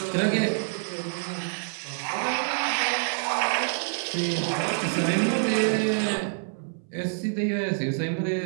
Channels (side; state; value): left; silent; 60 dB below the other